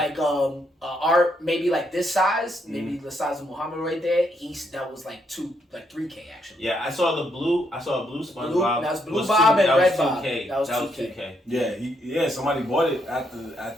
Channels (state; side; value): normal; both; correlation 0.76